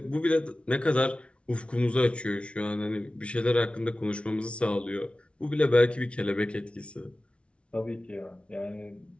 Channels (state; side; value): late; right; 0.060 ms